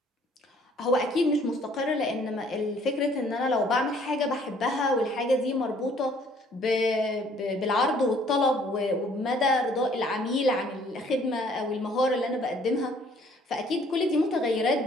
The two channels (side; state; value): both; normal; correlation 0.59